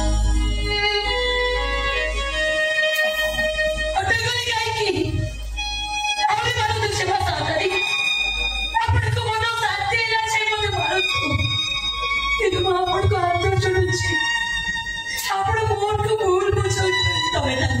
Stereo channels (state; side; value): identical; both; correlation 1.00